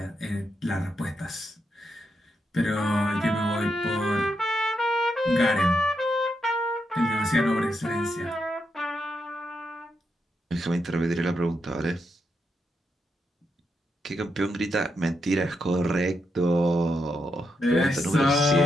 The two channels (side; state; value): both; normal; correlation 0.82